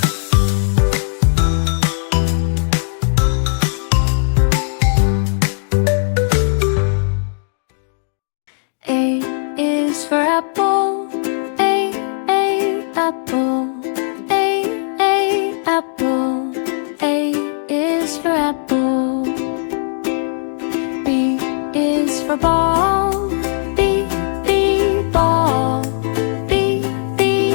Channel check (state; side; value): silent; right; 68 dB below the other